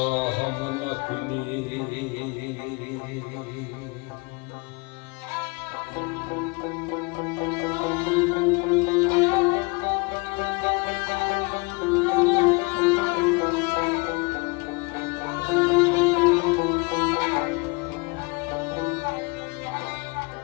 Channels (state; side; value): quieter; right; 28.2 dB